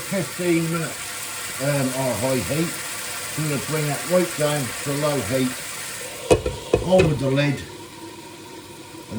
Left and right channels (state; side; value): identical; both; correlation 1.00